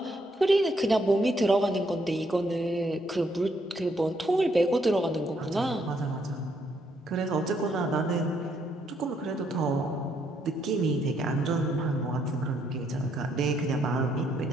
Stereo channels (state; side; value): normal; both; correlation 0.73